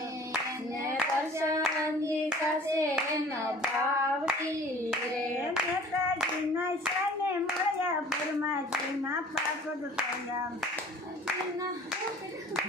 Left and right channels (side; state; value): both; normal; correlation 0.47